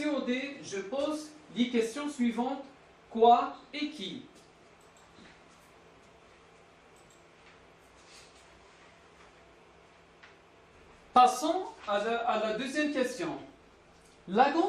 je pose les questions suivantes. Quoi et qui? Passons à la deuxième question. La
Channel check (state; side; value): identical; both; correlation 1.00